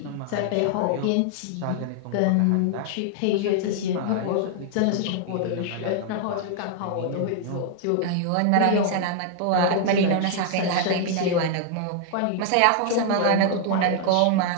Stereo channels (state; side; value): different; both; correlation 0.00